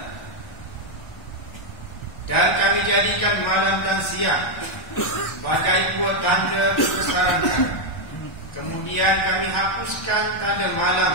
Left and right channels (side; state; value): right; late; 1.4 ms